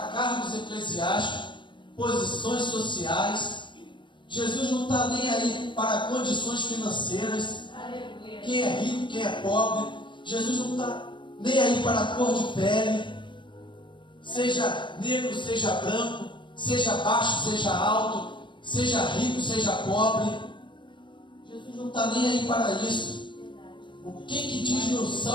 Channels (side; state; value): right; late; 0.23 ms